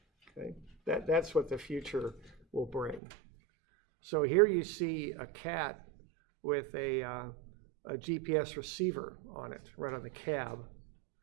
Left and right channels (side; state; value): left; drops out; at 3.0 s